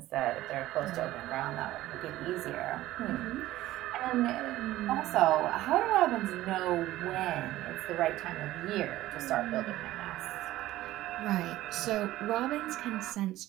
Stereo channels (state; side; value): quieter; left; 15.6 dB